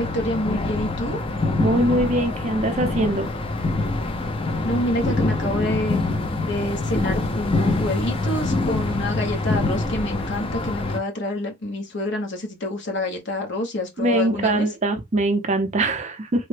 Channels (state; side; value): normal; both; correlation 0.58